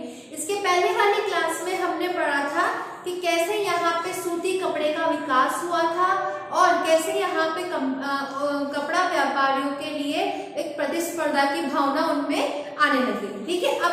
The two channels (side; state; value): both; identical; correlation 1.00